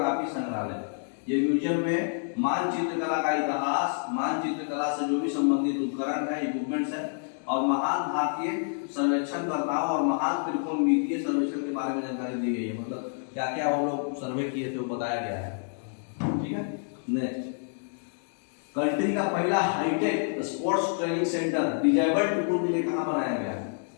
संग्रहालय। ये म्यूजियम में मानचित्र कला का इतिहास, मानचित्र कला से जो भी संबंधित उपकरण है, इक्विपमेंट्स है, और महान भारतीय सर्वेक्षणकर्ताओं और महान त्रिकोणमितीय सर्वेक्षण के बारे में जानकारी दी गई है। मतलब क्या क्या वो लोग सर्वे किए थे वो बताया गया है, ठीक है। नेक्स्ट, कंट्री का पहला hitech sports training centre disabled people के लिए कहाँ बनाया गया है?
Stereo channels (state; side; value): silent; right; digital silence